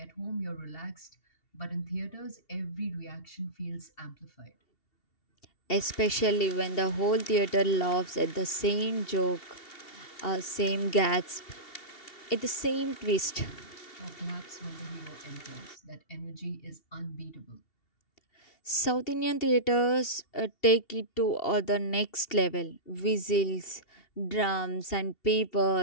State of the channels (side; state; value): right; late; 2.7 ms